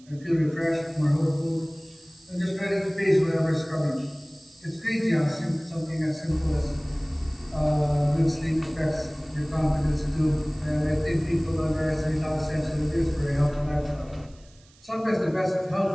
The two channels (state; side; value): noise; right; hiss, 28 dB below the sound